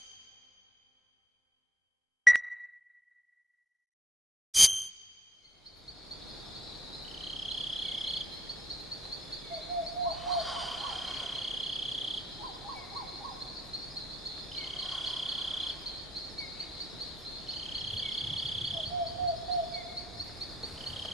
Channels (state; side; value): normal; both; correlation 0.72